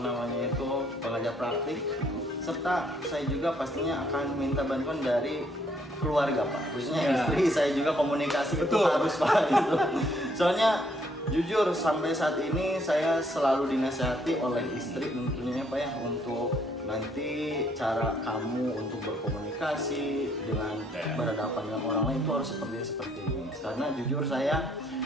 pengajar praktik, serta saya juga pastinya akan minta bantuan dari keluarga Pak, khususnya istri saya juga, komunikasi itu harus Pak gitu. Soalnya jujur sampai saat ini saya selalu dinasihati oleh istri tentunya Pak ya, untuk nanti cara kamu untuk berkomunikasi dengan berhadapan dengan orang lain itu harus seperti ini. Karena jujur saya,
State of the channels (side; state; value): both; normal; correlation 0.68